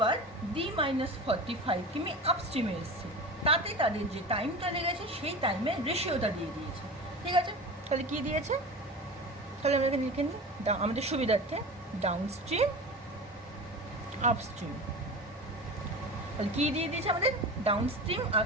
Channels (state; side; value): normal; both; correlation 0.31